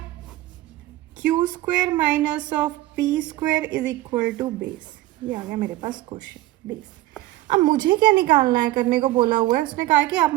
q square minus of P square is equal to base. ये आ गया मेरे पास क्वेश्चन बेस। अब मुझे क्या निकालना है, करने को बोला हुआ है, उसने कहा कि आप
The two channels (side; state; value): left; quieter; 16.7 dB